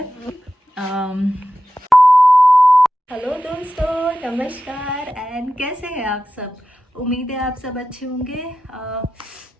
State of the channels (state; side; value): normal; both; correlation 0.93